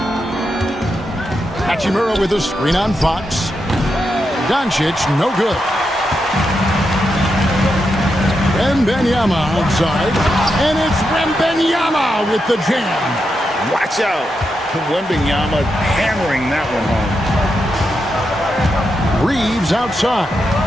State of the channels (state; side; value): normal; both; correlation 0.85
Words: Hachimura with a screen on Fox. Doncic, no good. Wembanyama outside. And it's Wembanyama with the jam. Watch out. Wembanyama hammering that one home. Reeves outside.